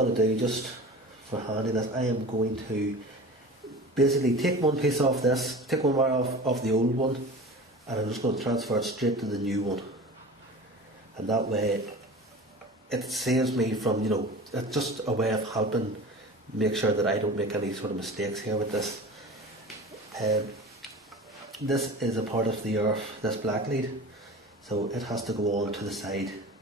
to do, just for handiness, I am going to basically take one piece off this, take one wire off the old one, and I'm just going to transfer it straight to the new one. And that way it saves me from, it's just a way of helping make sure that I don't make any sort of mistakes here with this. This is a part of the earth, this black lead, so it has to go on to the side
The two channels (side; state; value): both; normal; correlation 0.36